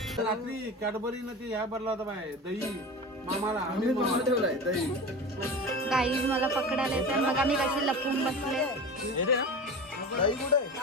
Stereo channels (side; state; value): both; normal; correlation 0.30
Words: रात्री कॅडबरी न ते ह्या भरला होता बाय दही मामाला आम्ही बनवून ठेवलाय दही. गाईज मला पकडायला येते. मग आम्ही कशी लपून बसले. दही कुठे आहे?